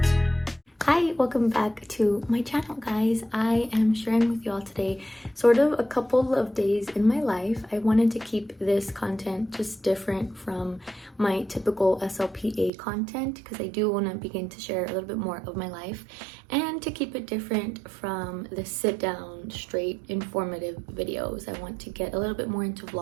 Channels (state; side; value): drops out; left; at 12.7 s